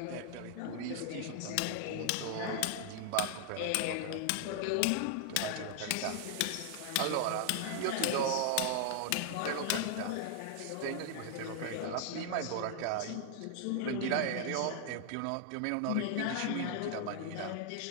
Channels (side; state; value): both; different; correlation 0.00